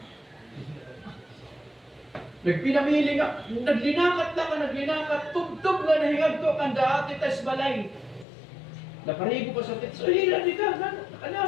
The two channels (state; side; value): drops out; right; at 8.2 s